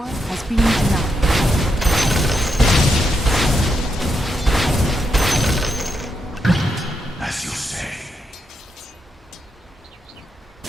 has been denied. as you say.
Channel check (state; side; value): normal; both; correlation 0.82